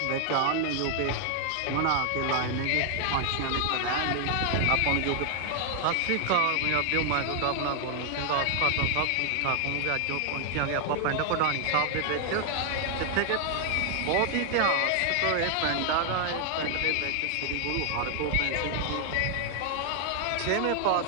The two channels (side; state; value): both; different; correlation 0.00